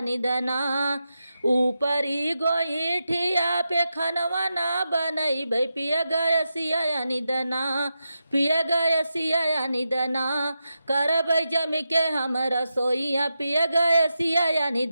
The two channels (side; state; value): both; inverted; correlation -0.88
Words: ऊपरी गोईठिया पे खनवा ना बनैबै पिया गैसिया या निदना, पिया गैसिया या निदना, करबै जमी के हम रसोइया पिया गैसिया या